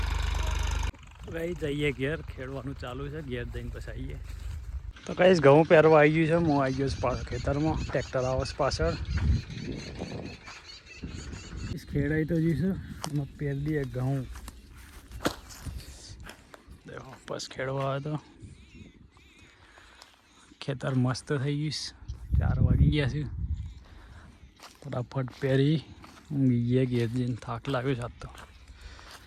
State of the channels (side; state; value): both; identical; correlation 1.00